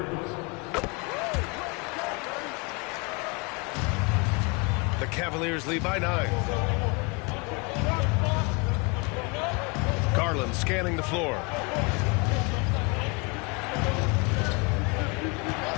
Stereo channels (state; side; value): quieter; right; 29.5 dB